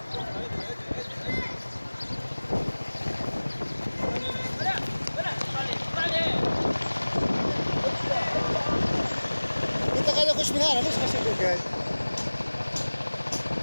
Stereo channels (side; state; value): both; inverted; correlation -1.00